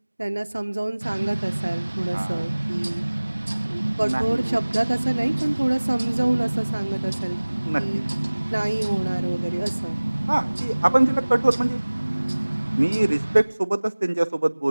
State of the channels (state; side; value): inverted; both; correlation -1.00